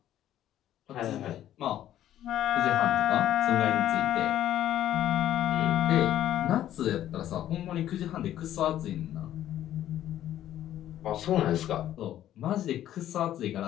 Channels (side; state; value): right; quieter; 12.1 dB